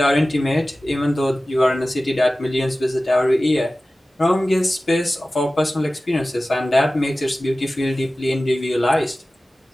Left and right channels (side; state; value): both; normal; correlation 0.96